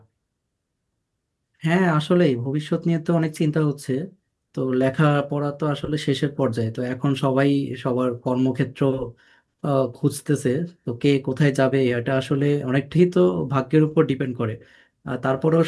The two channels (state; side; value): identical; both; correlation 1.00